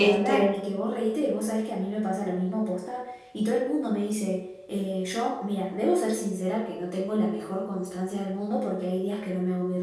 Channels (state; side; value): identical; both; correlation 1.00